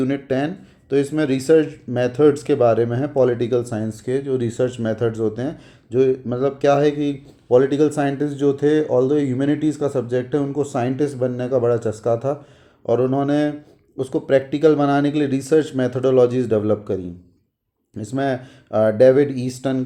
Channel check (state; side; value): identical; both; correlation 1.00